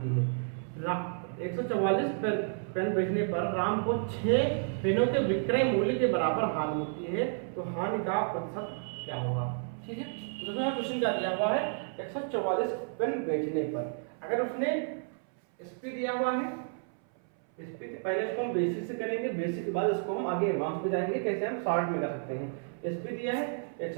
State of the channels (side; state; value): left; silent; 57 dB below the other